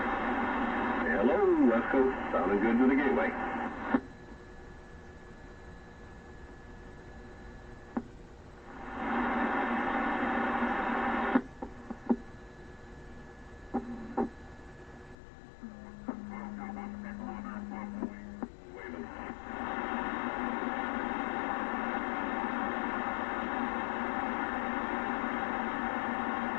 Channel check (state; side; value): drops out; right; at 15.2 s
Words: Hello, West Coast. Sounding good to the gateway.